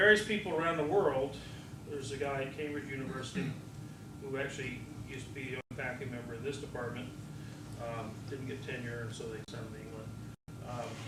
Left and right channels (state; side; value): identical; both; correlation 1.00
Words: people around the world, there's a guy at Cambridge University who actually used to be a faculty member in this department, didn't get tenure, and so they sent him to England.